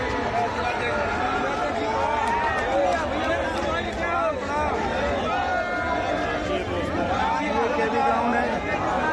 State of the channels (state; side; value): identical; both; correlation 1.00